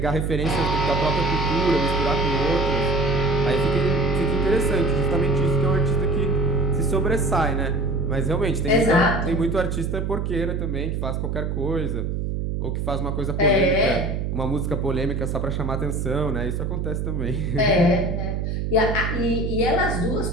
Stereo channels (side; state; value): right; noise; hum, 1 dB below the sound